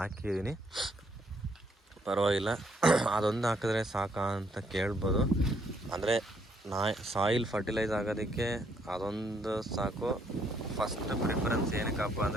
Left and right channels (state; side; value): normal; both; correlation 0.71